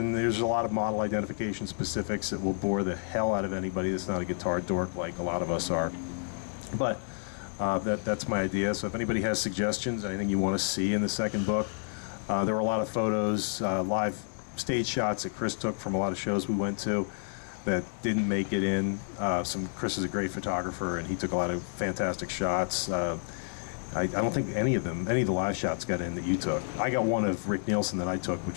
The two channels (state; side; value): silent; right; 58 dB below the other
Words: there's a lot of model identification specifics that will bore the hell out of anybody that's not a guitar dork like a lot of us are. But that's my idea. So if anybody has suggestions, anything you want to see in the second book, there were a lot of photos, live stage shots that Chris took from a lot of shows we went to that didn't make it in. Chris is a great photographer, and he took a lot of fantastic shots. I don't think any of the live shots got in that you took. I got one of Rick Nielsen that I took,